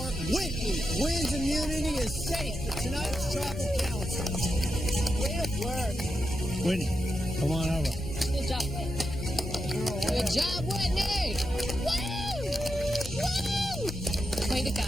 Whitney wins immunity, is safe for tonight's travel council. Good work. Whitney, come on over. Good job, Whitney. Good job, Whitney! Woo! Woo! Way to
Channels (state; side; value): normal; both; correlation 0.87